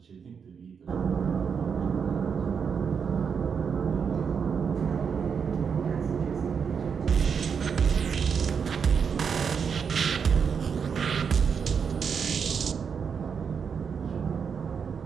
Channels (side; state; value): left; quieter; 6.5 dB